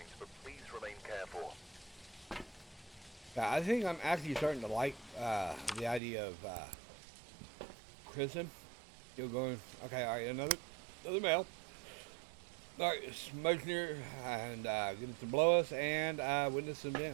but please remain careful. Yeah, I think I'm actually starting to like the idea of prison. Still going. Okay, all right, another mail. All right, smoke near and get it to blow us and witness an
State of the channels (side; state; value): left; drops out; at 6.0 s